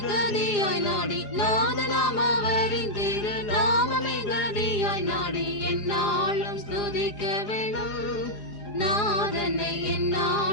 கதியாய் நாடி, நாதனாம் அவரின் திருநாமமே கதியாய் நாடி எந்நாளும் ஸ்துதிக்க வேணும், நாதனை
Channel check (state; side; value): late; right; 4.8 ms